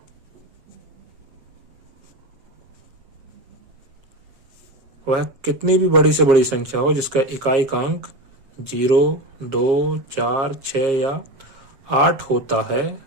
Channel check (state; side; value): late; left; 7.4 ms